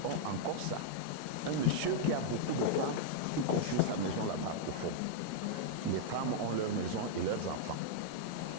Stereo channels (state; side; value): different; both; correlation -0.01